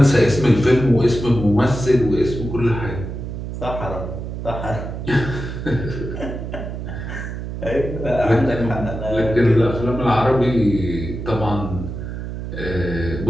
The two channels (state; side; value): noise; right; hum, 7 dB below the sound